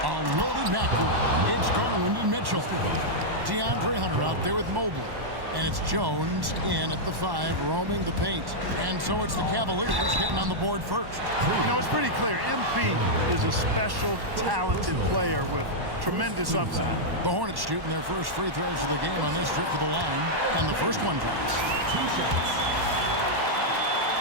A loaded backcourt. It's Garland and Mitchell. DeAndre Hunter out there with Mobley. And it's Jones in at the 5, roaming the paint. And so it's the Cavaliers getting on the board first. You know, it's pretty clear. MP is a special, talented player with tremendous upside. The Hornets shooting their first free throws of the game on this trip to the line. And the first one drops.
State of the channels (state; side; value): late; left; 1.1 ms